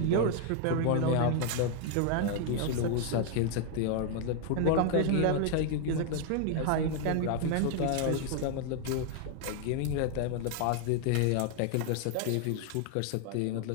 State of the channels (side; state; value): both; different; correlation 0.00